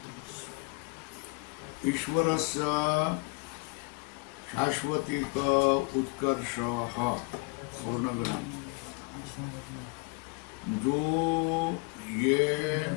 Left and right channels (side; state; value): right; quieter; 30.1 dB